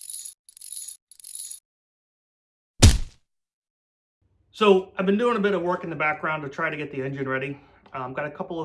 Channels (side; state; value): both; identical; correlation 1.00